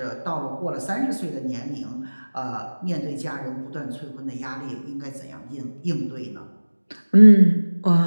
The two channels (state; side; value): inverted; both; correlation -1.00